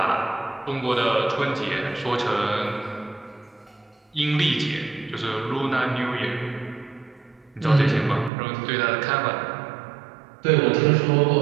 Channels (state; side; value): drops out; left; at 8.3 s